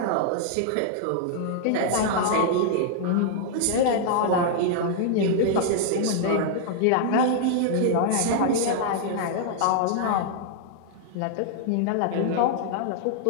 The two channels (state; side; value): different; both; correlation -0.01